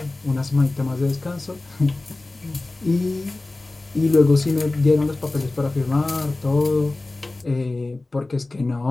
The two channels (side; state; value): right; quieter; 3.0 dB